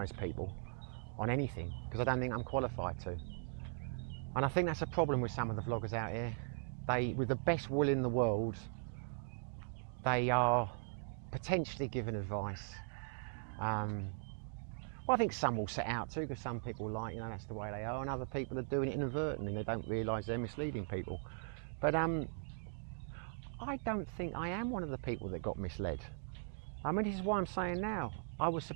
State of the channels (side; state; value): left; silent; digital silence